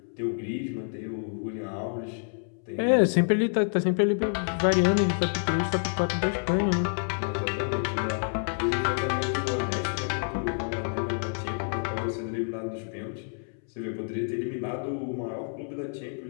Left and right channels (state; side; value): silent; right; 59 dB below the other